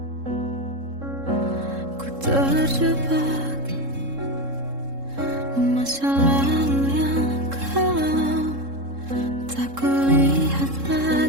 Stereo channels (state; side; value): late; left; 3.7 ms